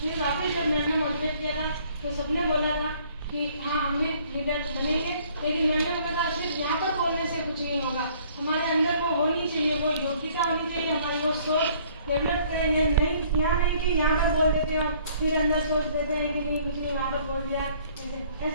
वापस जब मैम ने मोटिवेट किया था तो सबने बोला था कि हाँ हम भी लीडर बनेंगे, लेकिन मैंने बोला था सिर्फ यहाँ पर बोलने से कुछ नहीं होगा, हमारे अंदर वो होनी चाहिए, वो योग्यता होनी चाहिए, हमारी वो सोच डेवलप करेंगे। नहीं यहाँ नहीं कि यहाँ पर बोल देते हो फिर अंदर सोच देते हैं कि नहीं कुछ नहीं यहाँ पर बोल दिया, ऐसे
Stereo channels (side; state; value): both; inverted; correlation -0.59